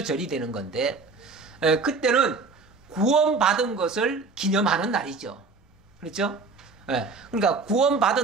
되는 건데 그때는 구원받은 것을 기념하는 날이죠. 그렇죠? 그러니까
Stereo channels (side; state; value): left; quieter; 4.2 dB